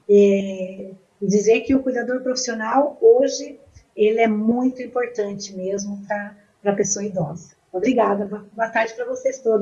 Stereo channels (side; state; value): both; identical; correlation 1.00